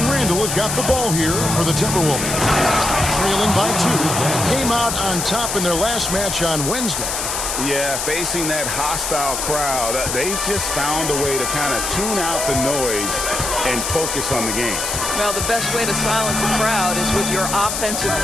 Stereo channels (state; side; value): noise; left; hiss, 2 dB below the sound